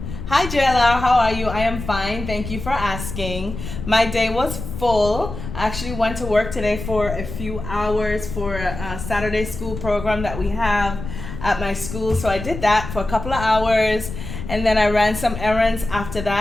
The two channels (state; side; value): noise; left; rumble, 9 dB below the sound